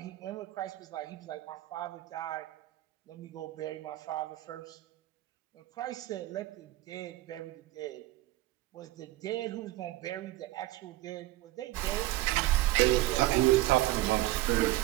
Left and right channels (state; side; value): quieter; left; 17.1 dB